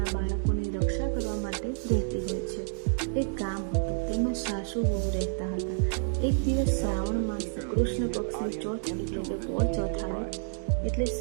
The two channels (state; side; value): silent; left; digital silence